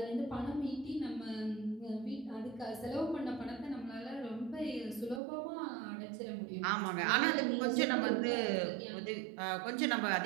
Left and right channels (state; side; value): drops out; left; at 5.2 s